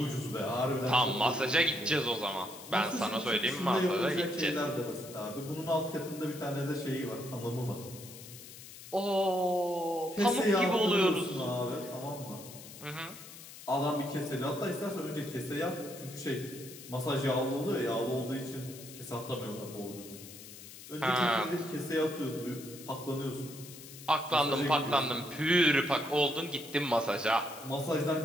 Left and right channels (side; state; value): left; noise; hiss, 15 dB below the sound